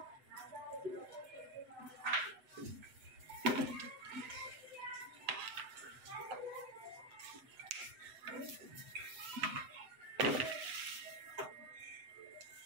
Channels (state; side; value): late; left; 7.8 ms